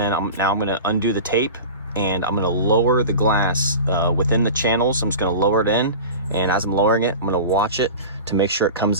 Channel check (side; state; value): both; inverted; correlation -0.32